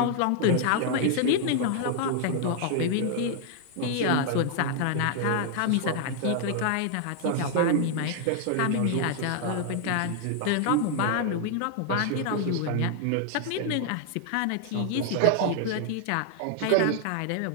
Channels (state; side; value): different; both; correlation 0.00